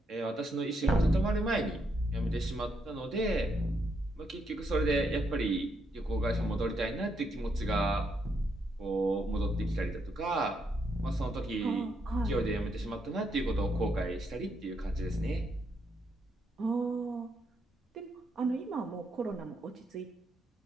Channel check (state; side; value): normal; both; correlation 0.77